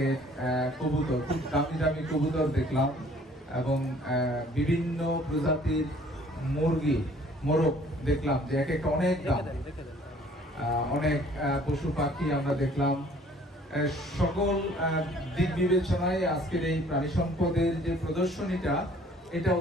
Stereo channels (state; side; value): normal; both; correlation 0.56